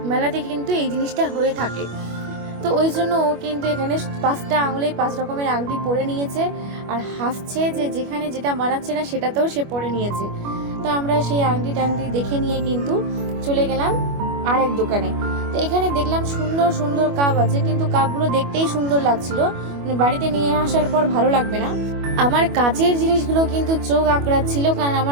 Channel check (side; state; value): left; late; 25 ms